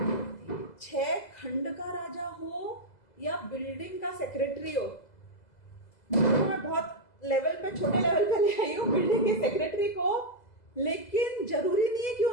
होती है। 6 खंड का राजा हो या बिल्डिंग का सेक्रेटरी हो, मैं बहुत लेवल पे छोटे लेवल पे ले आई हूँ बिल्डिंग के सेक्रेटरी को, लेकिन जरूरी नहीं है कि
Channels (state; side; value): late; right; 2.0 ms